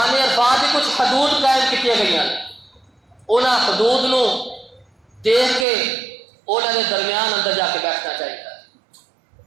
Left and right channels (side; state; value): left; drops out; at 5.7 s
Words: عرفات کی کچھ حدود قائم کی گئی ہیں، انہاں حدود نو دیکھ کے انہاں دے درمیان اندر جا کے بیٹھنا چاہیے۔